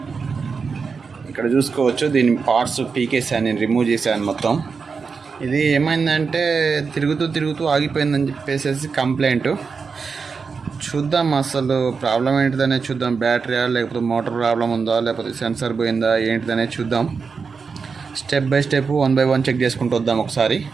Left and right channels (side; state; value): left; quieter; 5.2 dB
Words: ఇక్కడ చూసుకోవచ్చు, దీని పార్ట్స్ పీకేసాను, నేను రిమూవ్ చేశాను మొత్తం. ఇది ఏమైందంటే తిరుగుతూ తిరుగుతూ ఆగిపోయిందని చెప్పేసి కంప్లైంట్. చూద్దాం అసలు ప్రాబ్లం ఏంటిదనే చూద్దాం. బ్యాటరీయా లేకపోతే మోటార్ ప్రాబ్లం ఉందా లేకపోతే సెన్సర్ పోయిందా ఏంటిదనే చూద్దాం. Step by step 1 by 1 check చేసుకుంటూ వద్దాం ఒకసారి.